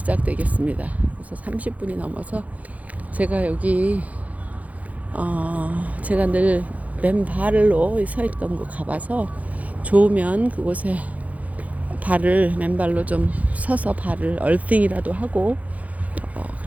그래서 30분이 넘어서 제가 여기 제가 늘 맨발로 서 있던 곳 가봐서, 좋으면 그곳에 맨발로 좀 서서 발을 얼싱이라도 하고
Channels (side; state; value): left; late; 0.071 ms